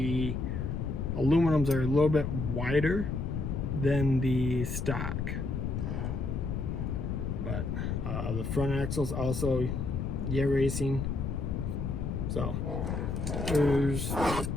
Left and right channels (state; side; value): noise; left; rumble, 2 dB below the sound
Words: aluminums are a little bit wider than the stock. But the front axles also racing. So